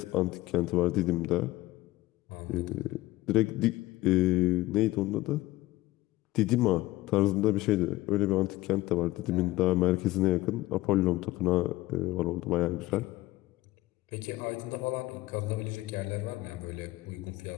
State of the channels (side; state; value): right; quieter; 18.0 dB